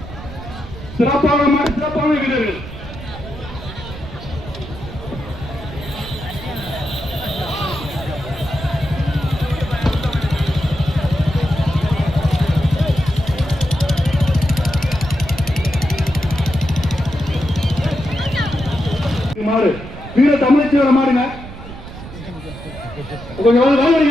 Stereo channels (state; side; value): noise; right; rumble, 13 dB below the sound